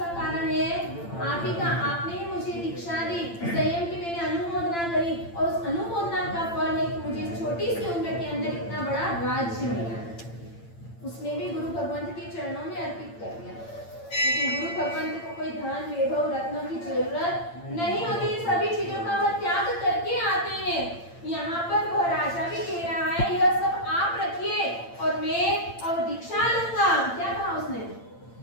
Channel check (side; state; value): right; late; 8.8 ms